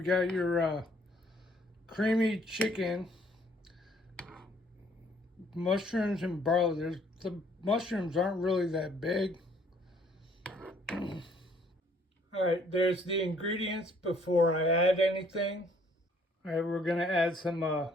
got your creamy chicken, mushrooms and barley. The mushrooms aren't really that big. All right, there's the ingredients before I add anything. All right, we're gonna add some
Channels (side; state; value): both; normal; correlation 0.62